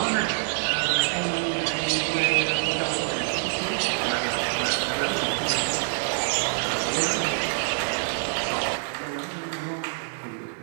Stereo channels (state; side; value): silent; left; digital silence